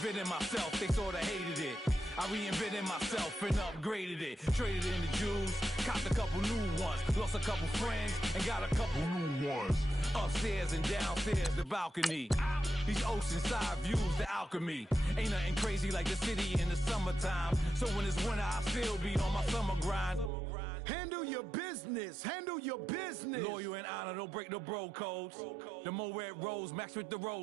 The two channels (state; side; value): drops out; left; at 20.3 s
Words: myself, they sorta hated it. I reinvented myself and upgraded it. Traded in the Jews, copped a couple new ones. Lost a couple friends and got a couple new ones. Upstairs and downstairs, the balcony. These oceanside views, the alchemy. Ain't nothing crazy like the city in the summertime. So when it's winter, I still be on my summer grind. Handle your business, handle your business. Loyal and honor, don't break no bro codes. The more red rose, max with the